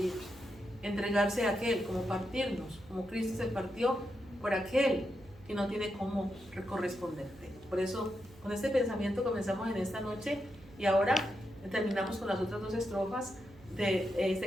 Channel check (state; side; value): noise; right; hum, 23 dB below the sound